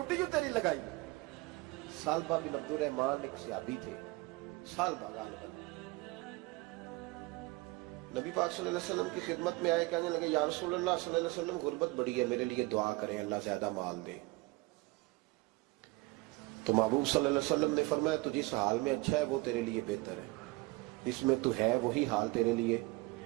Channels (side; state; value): left; quieter; 23.2 dB